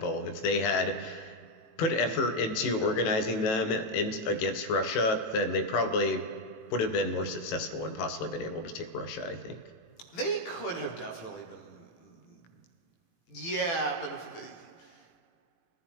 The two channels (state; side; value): late; right; 18 ms